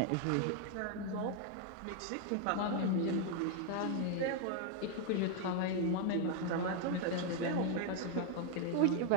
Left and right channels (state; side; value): different; both; correlation 0.01